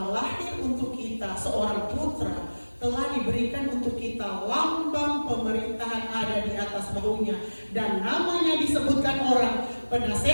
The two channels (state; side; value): inverted; both; correlation -1.00